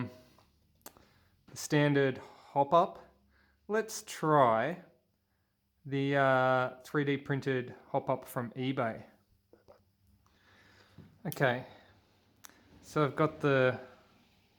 the standard hopup. Let's try the 3D printed hopup from eBay. Okay, so I've got the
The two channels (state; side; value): identical; both; correlation 1.00